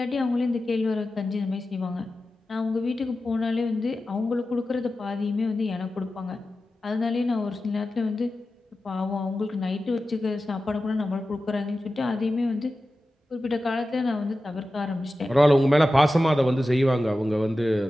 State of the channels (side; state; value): both; normal; correlation 0.94